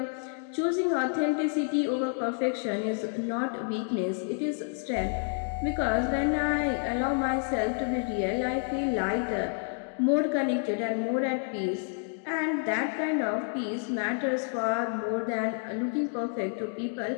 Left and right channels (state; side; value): silent; right; 58 dB below the other